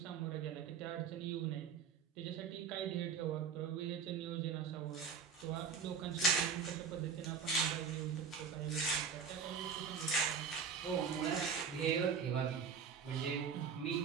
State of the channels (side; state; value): left; quieter; 6.2 dB